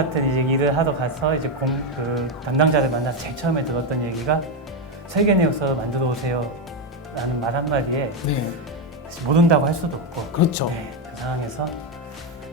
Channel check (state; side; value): normal; both; correlation 0.07